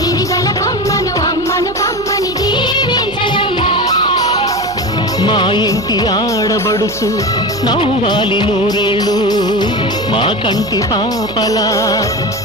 కొమ్మను అమ్మను కమ్మని దీవించరమ్మ మా ఇంటి ఆడబడుచు నవ్వాలి నూరేళ్ళు మా కంటి పాపలా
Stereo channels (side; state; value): right; noise; hum, 19 dB below the sound